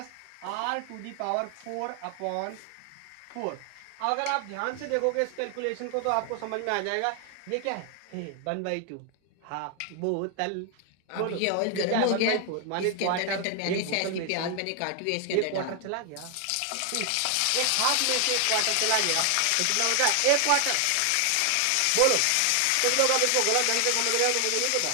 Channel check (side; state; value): both; different; correlation 0.00